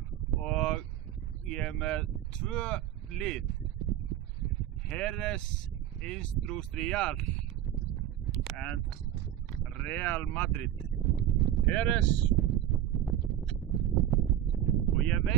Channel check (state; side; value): quieter; left; 11.6 dB